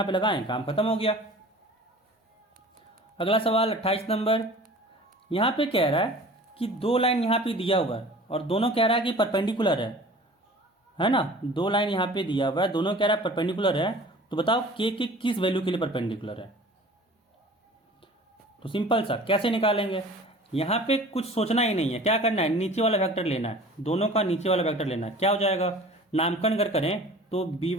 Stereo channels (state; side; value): normal; both; correlation 0.44